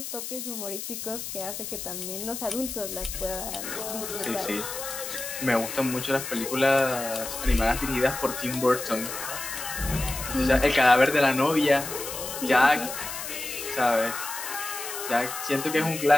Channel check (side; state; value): left; noise; hiss, 7 dB below the sound